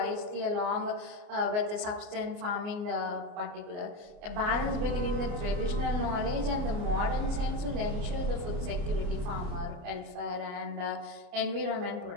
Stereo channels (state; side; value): late; left; 29 ms